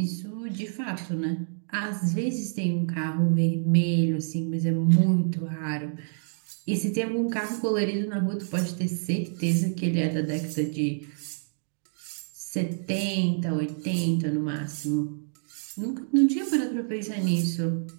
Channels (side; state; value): left; silent; digital silence